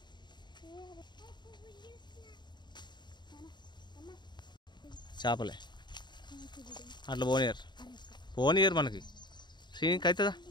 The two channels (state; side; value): late; right; 0.21 ms